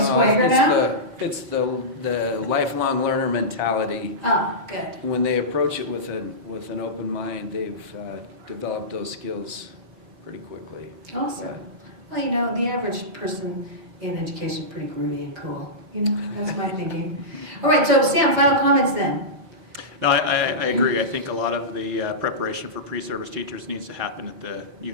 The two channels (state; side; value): late; left; 4.8 ms